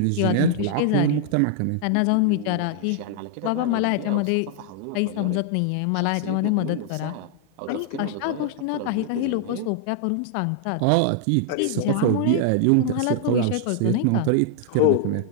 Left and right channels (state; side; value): different; both; correlation 0.00